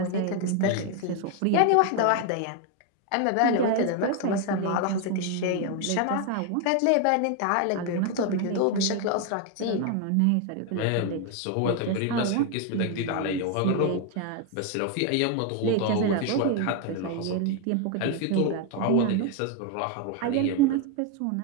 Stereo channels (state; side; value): different; both; correlation 0.01